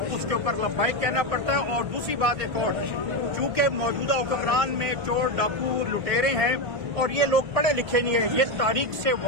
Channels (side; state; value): left; late; 1.6 ms